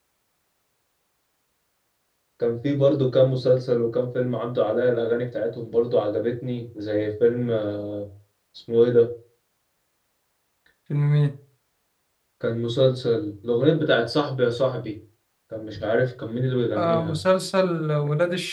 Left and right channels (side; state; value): both; identical; correlation 1.00